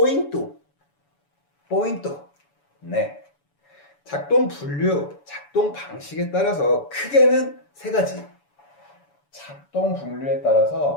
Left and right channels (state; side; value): late; right; 7.0 ms